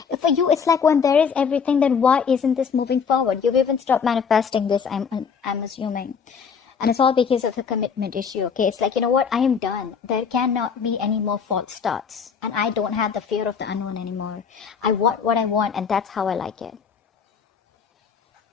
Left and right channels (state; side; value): quieter; right; 6.3 dB